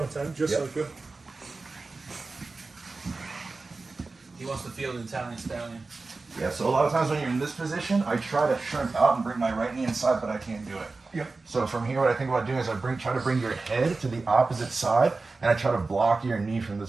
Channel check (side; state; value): left; quieter; 3.7 dB